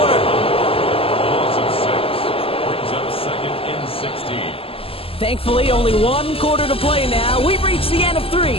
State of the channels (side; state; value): right; late; 0.27 ms